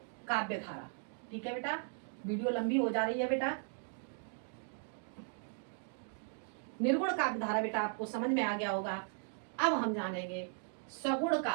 काव्य धारा, ठीक है बेटा। वीडियो लंबी हो जा रही है बेटा। निर्गुण काव्य धारा बेटा आपको समझ में आ गया होगा। अब हम जानेंगे सगुण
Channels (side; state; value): left; silent; 53 dB below the other